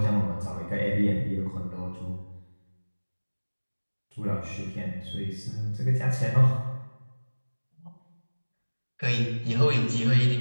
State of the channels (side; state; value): both; inverted; correlation -1.00